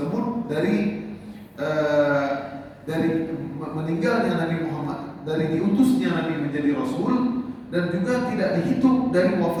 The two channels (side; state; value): both; identical; correlation 1.00